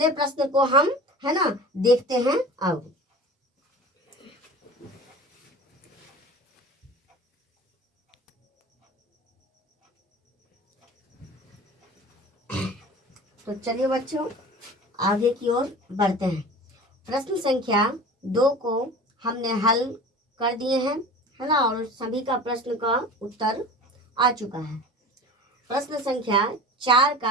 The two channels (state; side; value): normal; both; correlation 0.38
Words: प्रश्न को हम है ना देखते हैं। अब तो चलिए बच्चों आगे की ओर बढ़ते हैं। प्रश्न संख्या 2 को हमने हल कर दिए हैं, है ना, और सभी का प्रश्न का उत्तर आ चुका है। प्रश्न संख्या 4